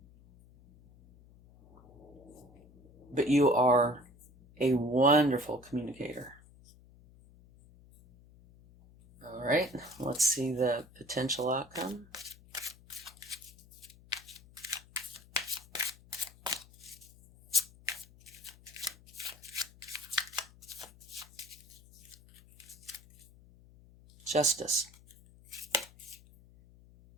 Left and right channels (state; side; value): noise; left; hum, 24 dB below the sound